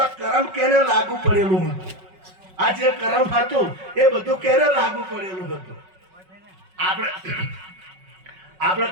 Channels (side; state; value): left; late; 5.4 ms